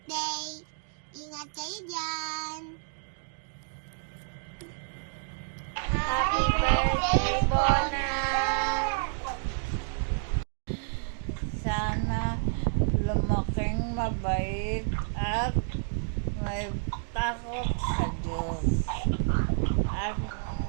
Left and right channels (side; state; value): left; silent; digital silence